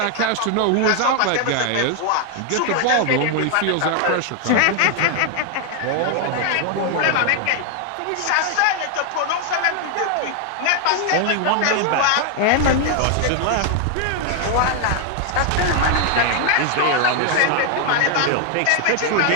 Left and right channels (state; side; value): different; both; correlation 0.00